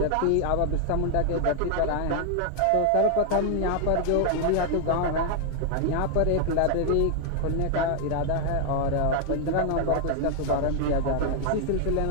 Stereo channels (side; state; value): both; different; correlation 0.00